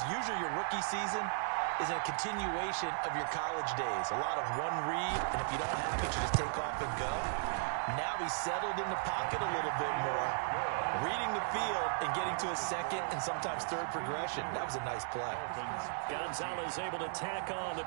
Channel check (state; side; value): silent; left; digital silence